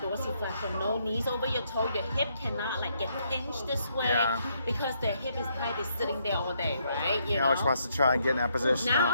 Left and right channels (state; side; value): inverted; both; correlation -0.74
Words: dorsiflexion. No knees over your toe. Your hip cannot like get pinched this way because their hip is tight. They're sitting there all day, right? You Alex know? wants to try and get in that position